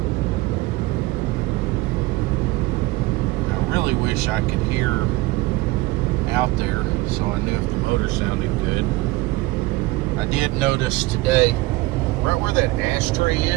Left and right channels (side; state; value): left; quieter; 20.3 dB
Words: I really wish I could hear out there so I knew if the motor sounded good. I did notice today, right where that ashtray